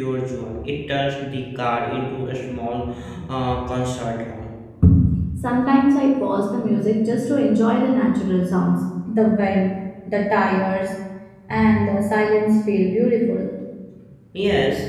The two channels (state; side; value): identical; both; correlation 1.00